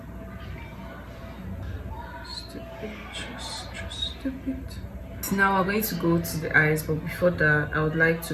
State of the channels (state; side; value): identical; both; correlation 1.00